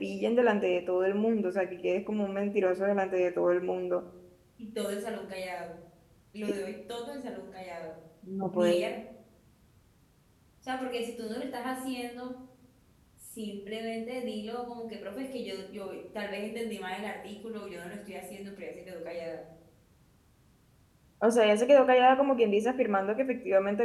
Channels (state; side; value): identical; both; correlation 1.00